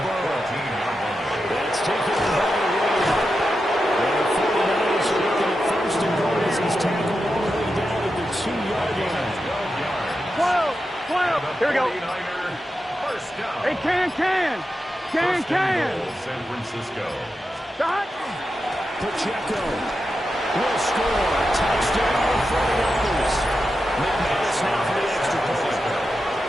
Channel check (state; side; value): normal; both; correlation 0.89